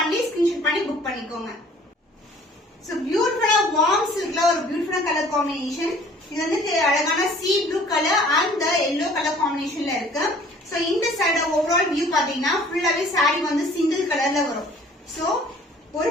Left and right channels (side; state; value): both; normal; correlation 0.53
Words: screenshot பண்ணி புக் பண்ணிக்கோங்க. so beautiful warm silkல ஒரு பியூட்டிஃபுல்லான கலர் காம்பினேஷன். இது வந்து அழகான sea blue color and the yellow color combinationல இருக்கு. so இந்த சைடு ஓவரால் வியூ பாத்தீங்கன்னா ஃபுல்லாவே saree வந்து சிங்கிள் கலர்ல வரும். so